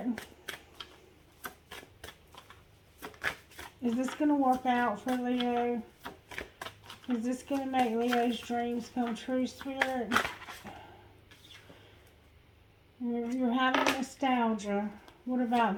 Is this going to work out for Leo? Is this going to make Leo's dreams come true, Spirit? You're having nostalgia. What about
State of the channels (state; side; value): identical; both; correlation 1.00